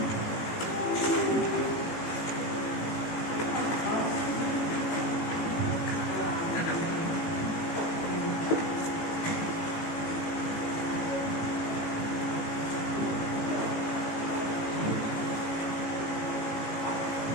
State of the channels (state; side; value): late; right; 18 ms